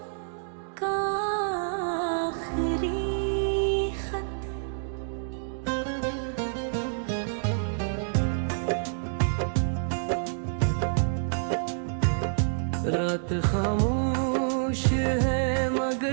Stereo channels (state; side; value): silent; left; digital silence